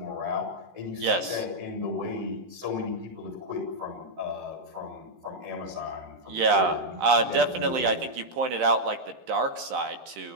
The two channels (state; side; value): late; left; 16 ms